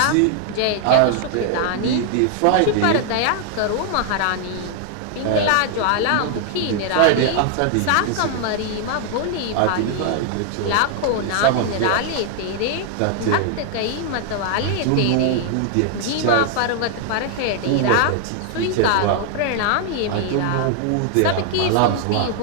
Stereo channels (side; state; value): both; different; correlation 0.00